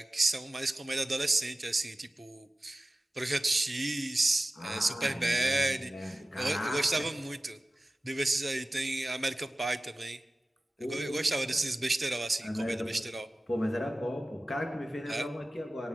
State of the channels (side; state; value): both; normal; correlation 0.96